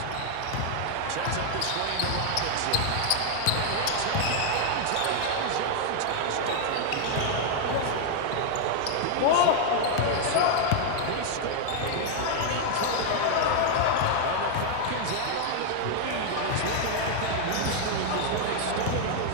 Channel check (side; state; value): both; different; correlation 0.00